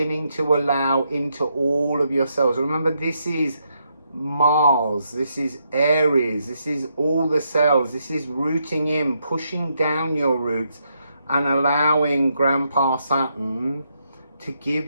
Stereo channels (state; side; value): inverted; both; correlation -0.79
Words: to allow into all of yourselves. Remember, this is Mars, this is Aries, this is all the cells, this is rooting in, pushing down your roots and allowing Grandpa Saturn to give